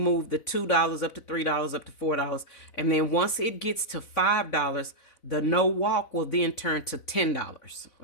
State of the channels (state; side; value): late; right; 4.0 ms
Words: the $2 up to $3 up to $4, and then once it gets to $5, the no walk will then turn to $10.